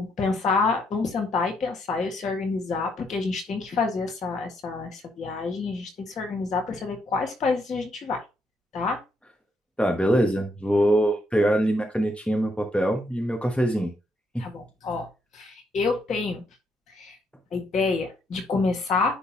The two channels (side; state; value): both; normal; correlation 0.75